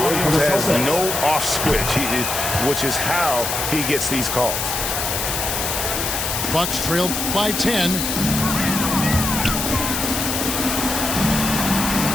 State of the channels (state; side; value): noise; left; hiss, 2 dB below the sound